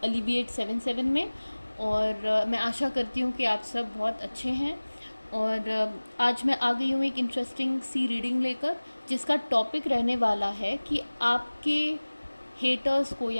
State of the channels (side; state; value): both; inverted; correlation -1.00